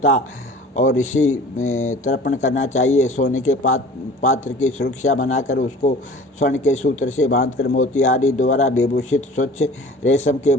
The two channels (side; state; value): both; normal; correlation 0.44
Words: और ऋषि तर्पण करना चाहिए। सोने के पात्र की सुरक्षा बनाकर उसको स्वर्ण के सूत्र से बांधकर मोती आदि द्वारा विभूषित स्वच्छ रेशम के